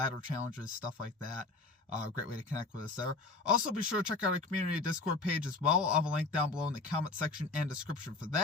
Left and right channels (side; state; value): right; quieter; 3.6 dB